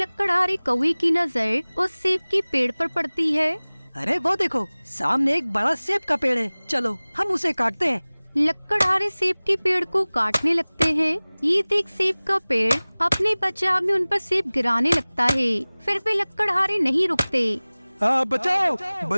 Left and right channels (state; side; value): inverted; both; correlation -1.00